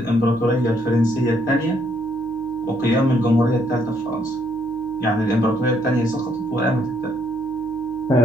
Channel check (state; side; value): noise; left; hum, 23 dB below the sound